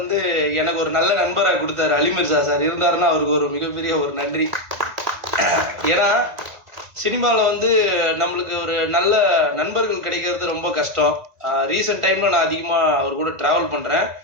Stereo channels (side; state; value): left; late; 1.9 ms